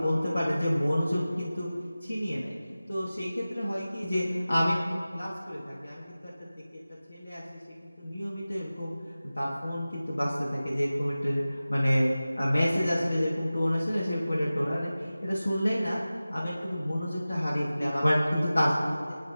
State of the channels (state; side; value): inverted; both; correlation -0.97